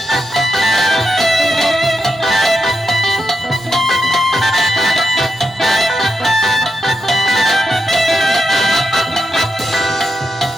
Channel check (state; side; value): normal; both; correlation 0.84